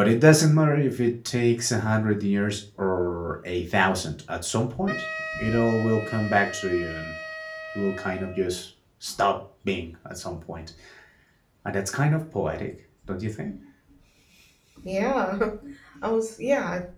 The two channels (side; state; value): both; identical; correlation 1.00